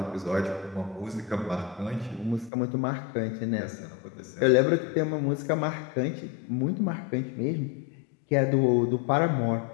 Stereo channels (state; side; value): drops out; right; at 2.5 s